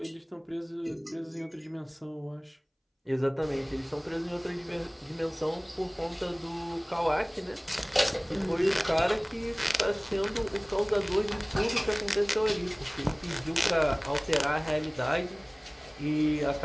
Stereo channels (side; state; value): both; identical; correlation 1.00